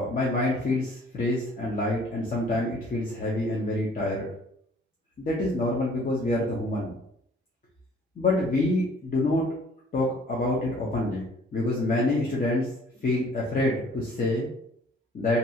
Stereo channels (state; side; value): normal; both; correlation 0.56